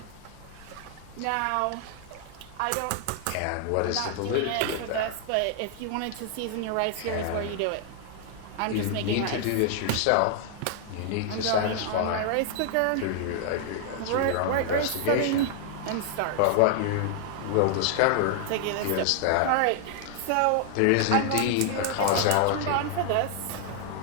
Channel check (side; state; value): both; different; correlation 0.00